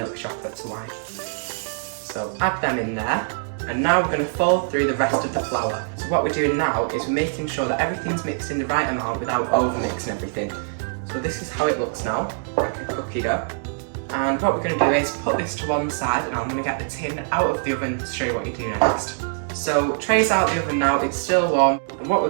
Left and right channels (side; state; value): left; silent; digital silence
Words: chocolate to wine. So add them in there. And now we're going to fold through the rest of the flour. So what we're doing now is we're making sure that everything's mixed in the right amount without over mixing everything. So this is how it looks now, like a cookie dough. And what we're going to do is put this to one side, and I'm going to get the tin out of the oven to show you what you do next. So tray's out of the oven now, it's still warm, and what